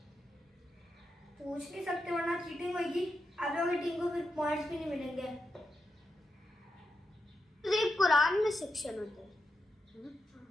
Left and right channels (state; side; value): normal; both; correlation 0.85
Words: पूछ नहीं सकते वरना चीटिंग होगी। आप लोगों की टीम को फिर पॉइंट्स भी नहीं मिलेंगे। सिर्फ कुरान में सेक्शन होता है।